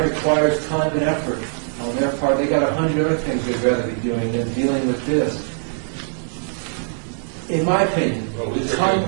requires time and effort on their part. They got 100 other things they'd rather be doing than dealing with this. In my opinion, Well, the these are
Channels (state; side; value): silent; left; 65 dB below the other